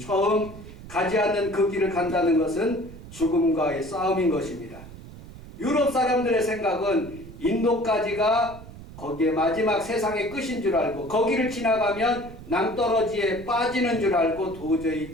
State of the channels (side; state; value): right; noise; rumble, 16 dB below the sound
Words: 가지 않는 그 길을 간다는 것은 죽음과의 싸움인 것입니다. 유럽 사람들의 생각은 인도까지가 거기에 마지막 세상의 끝인 줄 알고 거기를 지나가면 낭떠러지에 빠지는 줄 알고